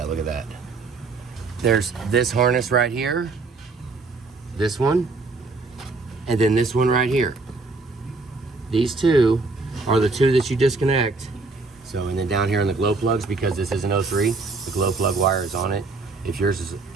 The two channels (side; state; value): left; quieter; 3.7 dB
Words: look at that. There's this harness right here, this one, and then this one right here. These two are the two that you disconnect. So, and then down here on the glow plugs, because this is an 03, the glow plug wire is on it. If yours is